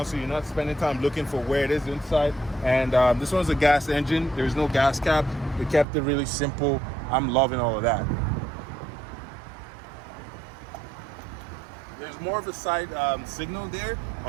so you're not spending time looking for where it is inside. And this one's a gas engine. There's no gas cap. They kept it really simple. I'm loving all of that. There's more of a side signal there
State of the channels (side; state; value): left; drops out; at 5.9 s